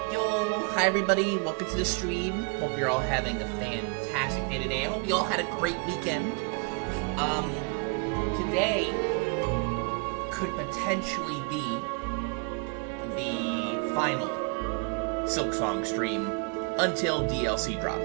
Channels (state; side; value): quieter; left; 34.7 dB